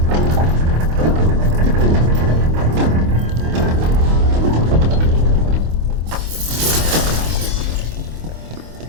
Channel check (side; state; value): left; late; 25 ms